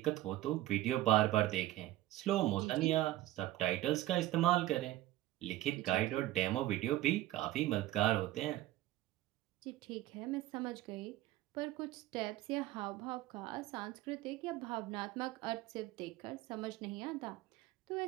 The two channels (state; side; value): quieter; left; 15.7 dB